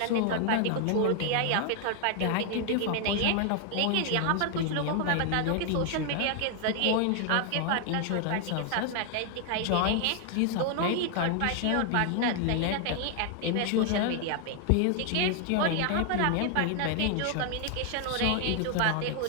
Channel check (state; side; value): different; both; correlation 0.00